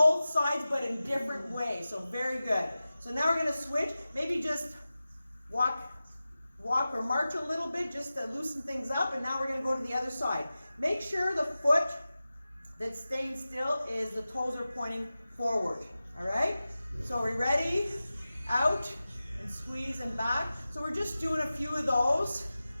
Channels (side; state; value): both; inverted; correlation -0.95